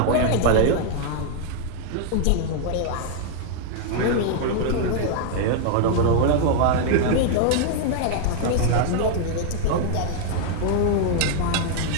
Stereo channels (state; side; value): different; both; correlation 0.00